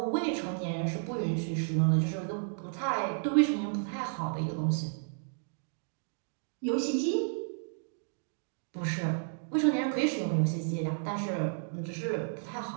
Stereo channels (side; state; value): left; silent; digital silence